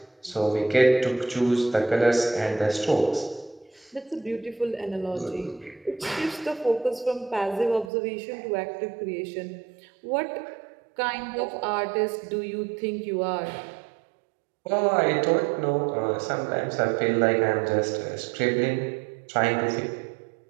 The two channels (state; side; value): drops out; left; at 7.9 s